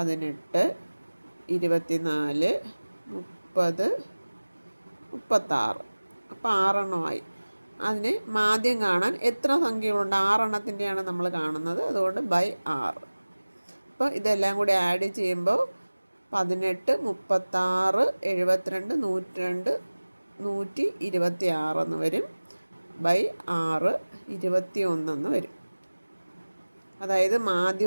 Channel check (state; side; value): inverted; both; correlation -1.00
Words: 24, 30, 36. അപ്പോൾ 6 എണ്ണമായി. അതിന് മാധ്യം കാണാൻ എത്ര സംഖ്യകളുണ്ട്? 6 എണ്ണത്തിൻ്റെയാണ് നമ്മൾ കാണുന്നത്. അതുകൊണ്ട് ബൈ 6. അപ്പോൾ ഇതെല്ലാം കൂടി ആഡ് ചെയ്യുമ്പോൾ 18, 36, 72, 102, 126 എന്ന് വരും. ബൈ 6, 21 എന്ന് വരും. അതായത്